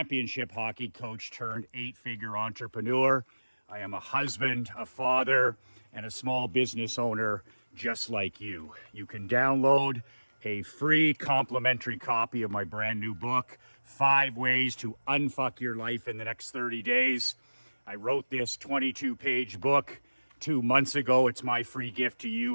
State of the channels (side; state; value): both; inverted; correlation -1.00